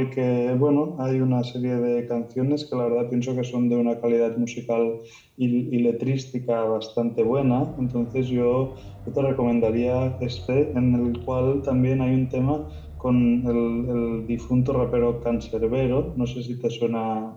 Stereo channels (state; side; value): identical; both; correlation 1.00